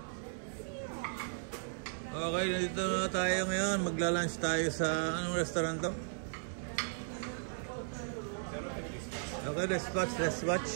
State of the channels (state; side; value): silent; left; 54 dB below the other